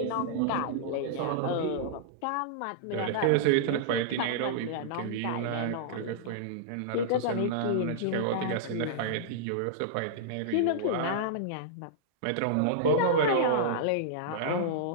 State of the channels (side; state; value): both; different; correlation -0.02